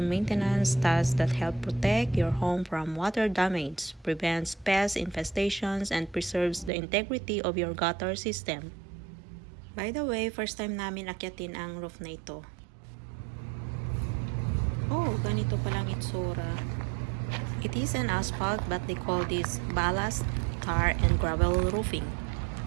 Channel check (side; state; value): left; drops out; at 6.7 s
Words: task that helps protect your home from water damage, prevents pest infestations, and preserves the integrity of your gutter system. By the way, first time namin akyatin ang roof na ito. Oh, ganito palang itsura. It is an asphalt but they call this ballast, tar, and gravel roofing.